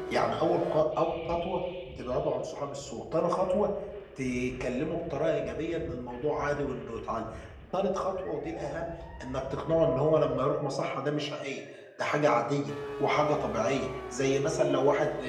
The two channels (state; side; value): identical; both; correlation 1.00